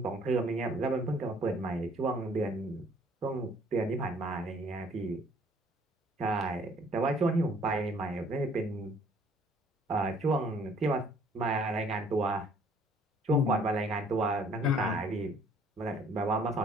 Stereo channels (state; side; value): normal; both; correlation 0.59